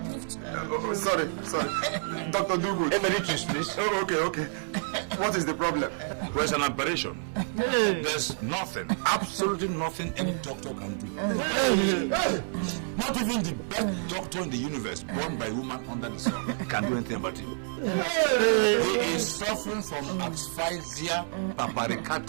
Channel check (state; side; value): silent; left; 55 dB below the other